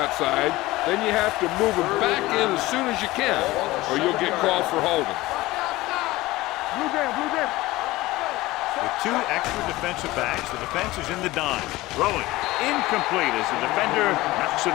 then you have to move them back in as soon as you can, or you'll get called for holding. Blue jam, blue jam. With 2 extra defensive backs, the defense is in the dime. Throwing incomplete as the defender knocks it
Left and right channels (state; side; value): quieter; right; 18.8 dB